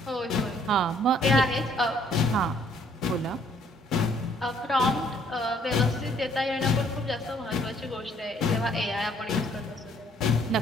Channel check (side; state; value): both; normal; correlation 0.63